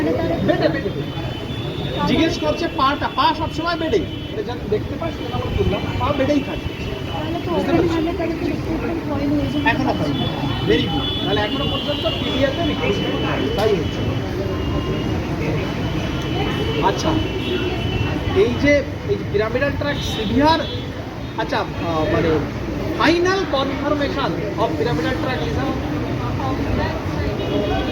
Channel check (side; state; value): both; identical; correlation 1.00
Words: তার বেডে জিজ্ঞেস করছে পা সবসময় বেডেই, যখন দেখতে পাস সেটা আমরা বললাম পা বেডেই থাকে। তাহলে তো অলরেডি আমরা তার রিক্রুটমেন্ট হয়নি, এই জন্য এখনো হয়, ভেরি গুড। তাহলে এখনো পর্যন্ত পিডিএতে রিক্রুটমেন্ট তাই হচ্ছে। আচ্ছা, এই যে পিরামিডাল ট্র্যাক সিভিয়ার, আচ্ছা মানে final confirmation of pyramidal tract lesion,